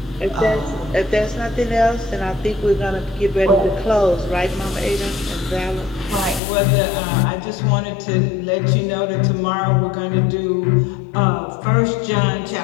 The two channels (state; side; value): drops out; right; at 6.4 s